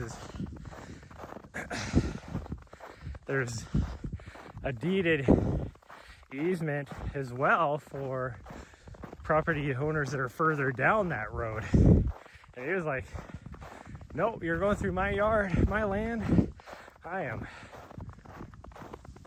there's a deeded easement as well for property owners that are further down that road. And he was like, nope, you're going through my yard, my land. I am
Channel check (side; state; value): both; identical; correlation 1.00